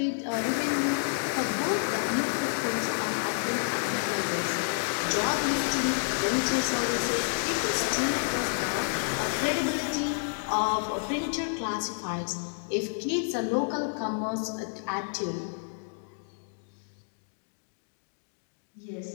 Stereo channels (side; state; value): right; silent; digital silence